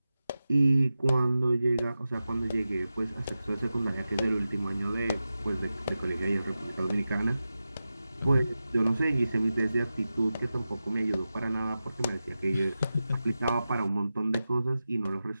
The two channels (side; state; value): both; inverted; correlation -0.93